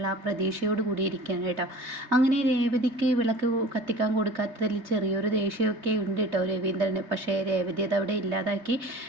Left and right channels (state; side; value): late; left; 3.3 ms